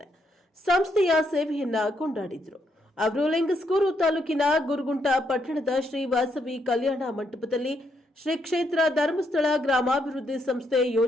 ಸಂಸ್ಥೆಯ ಸೇವೆಯನ್ನ ಕೊಂಡಾಡಿದರು. ಅವರು ಲಿಂಗಸ್ಕೂರು ತಾಲೂಕಿನ ಗುರುಗುಂಟ ಪಟ್ಟಣದ ಶ್ರೀ ವಾಸವಿ ಕಲ್ಯಾಣ ಮಂಟಪದಲ್ಲಿ ಶ್ರೀ ಕ್ಷೇತ್ರ ಧರ್ಮಸ್ಥಳ ಗ್ರಾಮಾಭಿವೃದ್ಧಿ ಸಂಸ್ಥೆ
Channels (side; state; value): both; normal; correlation 0.76